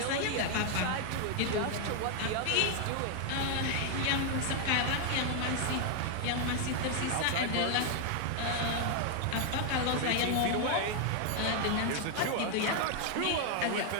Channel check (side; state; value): both; different; correlation 0.00